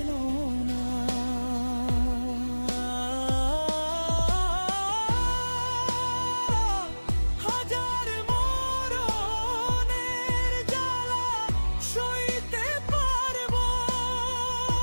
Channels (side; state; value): both; inverted; correlation -1.00